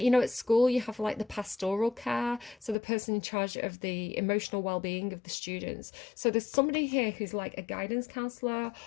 you know, at school you have like the pastoral care, so the person in charge of the emotional well-being of the students. So there's somebody here who's like a guidance counselor,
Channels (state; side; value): drops out; right; at 2.8 s